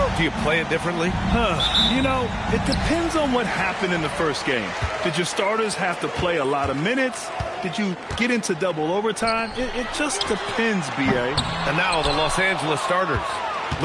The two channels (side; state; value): both; identical; correlation 1.00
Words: do you play it differently? You know, it depends on what happened in the first game. Did your starters have to play a lot of minutes? Did you get into double overtime? It just depends, B.A. And now the Los Angeles starters.